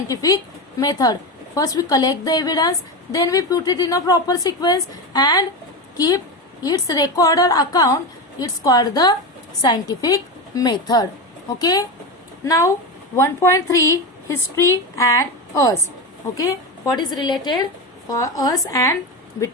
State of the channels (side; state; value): both; normal; correlation 0.18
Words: method. First we collect the evidence, then we put it in a proper sequence and keep its record or account. It's called the scientific method. Okay. Now 1.3, history and us. Okay, what is related for us and